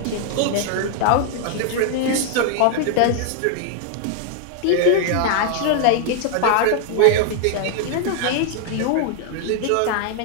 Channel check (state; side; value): different; both; correlation 0.00